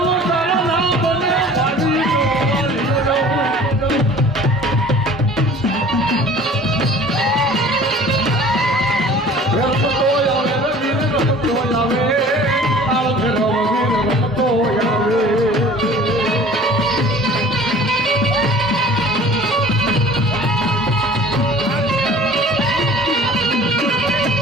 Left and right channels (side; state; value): both; normal; correlation 0.46